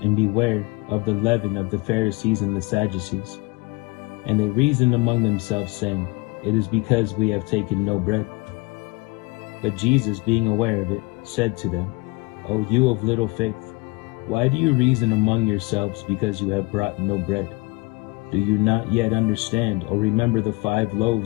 and beware of the leaven of the Pharisees and the Sadducees. And they reasoned among themselves, saying, It is because we have taken no bread. But Jesus, being aware of it, said to them, O you of little faith, why do you reason among yourselves because you have brought no bread? Do you not yet understand or remember the 5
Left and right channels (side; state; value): right; quieter; 26.1 dB